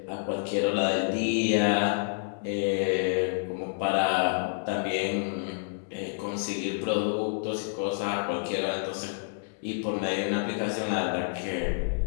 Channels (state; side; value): silent; right; 59 dB below the other